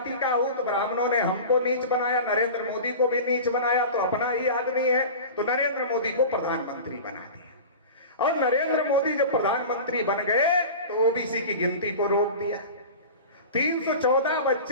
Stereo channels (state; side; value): inverted; both; correlation -0.33